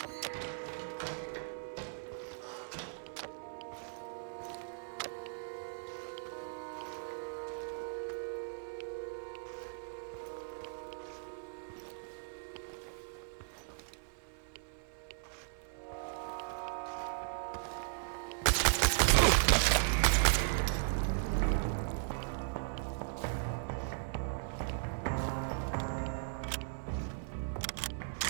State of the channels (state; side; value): silent; left; 53 dB below the other